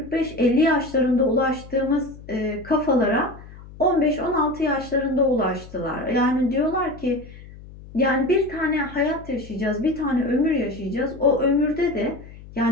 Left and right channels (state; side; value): noise; left; hum, 18 dB below the sound